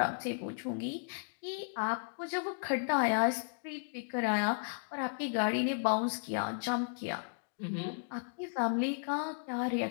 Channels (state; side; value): silent; right; digital silence